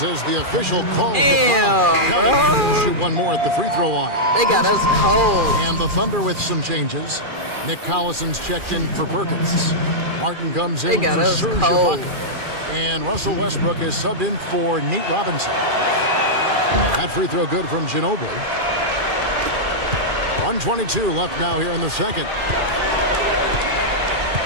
as the official calls the Damn, foul. bro. He'll shoot one more at the free throw line. They got us cold. And the Thunder with some changes. Nick Collison's checked in for Perkins. Martin comes They in got for us Serge cold. Ibaka. And Russell Westbrook is subbed in for Nate Robinson. That free throw good from Ginobili. 1:22 left now here in the second.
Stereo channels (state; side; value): late; left; 2.4 ms